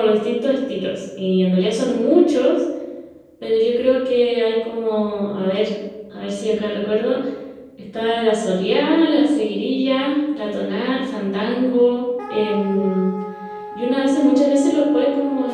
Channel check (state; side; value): identical; both; correlation 1.00